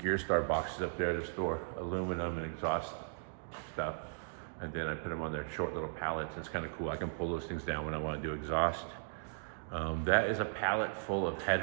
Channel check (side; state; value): left; silent; digital silence